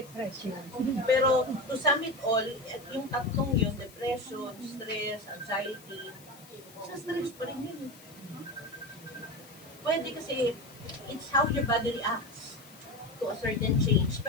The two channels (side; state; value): left; noise; hiss, 22 dB below the sound